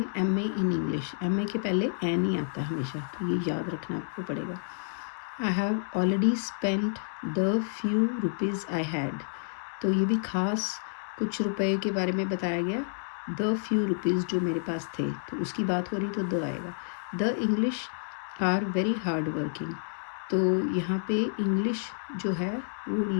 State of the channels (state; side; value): silent; right; digital silence